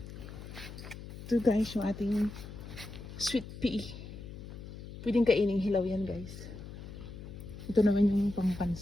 Ito guys yung ating sweet pea. Pwedeng kaining hilaw yan guys. Ito naman yung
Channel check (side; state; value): left; noise; hum, 12 dB below the sound